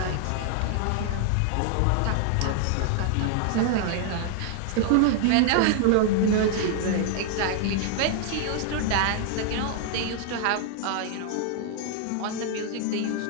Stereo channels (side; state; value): both; different; correlation 0.00